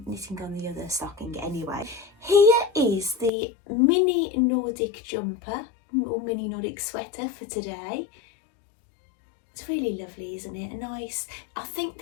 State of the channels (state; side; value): drops out; right; at 3.3 s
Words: knitting on the other stocking anyway. Here is the mini Nordic jumper or mini Nordic sweater for today. It's really lovely, isn't it? A nice, I think